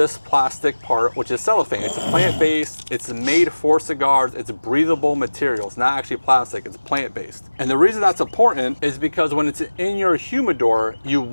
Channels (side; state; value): both; inverted; correlation -1.00